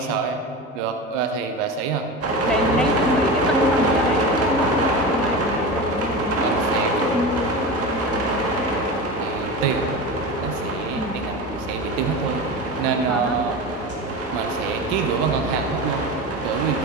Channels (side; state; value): both; normal; correlation 0.26